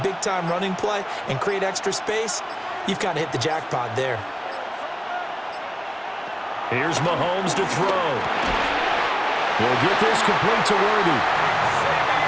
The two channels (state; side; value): identical; both; correlation 1.00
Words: big-time running play and create extra space, you've kind of hit the jackpot there. Here's Mahomes to throw. He'll get this complete to Worthy.